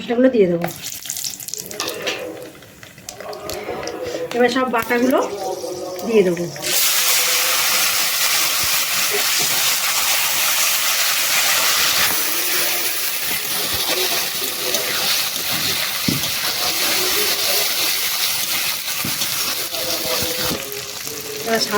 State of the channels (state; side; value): identical; both; correlation 1.00